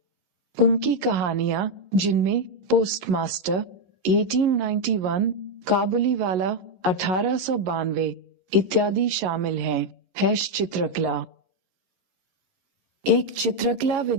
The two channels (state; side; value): late; left; 11 ms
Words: उनकी कहानियां, जिनमें पोस्टमास्टर 1891, काबुलीवाला 1892 इत्यादि शामिल हैं। चित्रकला। एक चित्रकला